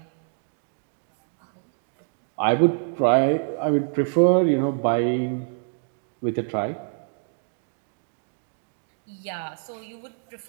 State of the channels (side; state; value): left; silent; digital silence